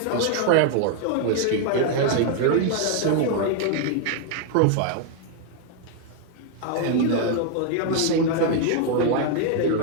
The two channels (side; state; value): both; different; correlation 0.00